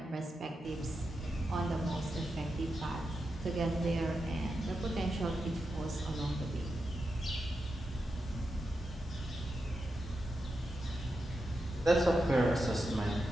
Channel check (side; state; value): both; normal; correlation 0.88